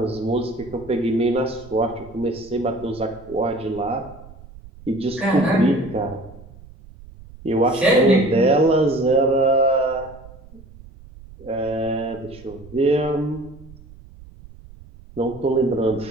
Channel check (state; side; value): noise; right; rumble, 20 dB below the sound